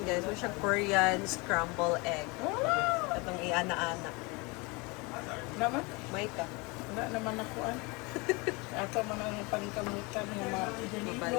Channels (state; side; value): quieter; right; 27.0 dB